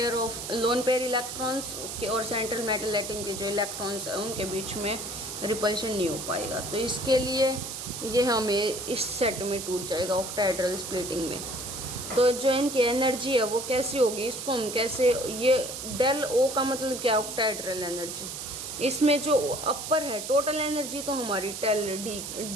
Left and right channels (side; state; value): right; noise; hiss, 7 dB below the sound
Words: पेयर इलेक्ट्रॉन्स और सेंट्रल मेटल एटम के जो इलेक्ट्रॉन्स हैं उनके बीच में रिपल्शन नहीं हो पाएगा। तो इसके लिए ये हमें इस सेट में टूट जाएगा ऑक्टाहेड्रल स्प्लिटिंग में। तो जो इनकी एनर्जी है वो कैसी होगी, इसको हम कैसे, ये डेल ओ का मतलब क्या, ऑक्टाहेड्रल एनर्जी। इसमें जो अपर है टोटल एनर्जी तो हमारी